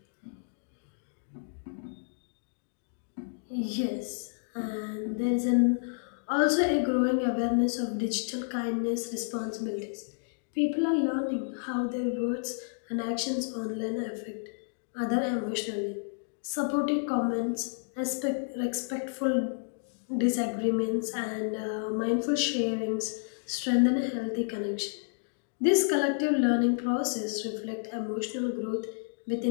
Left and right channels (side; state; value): right; silent; digital silence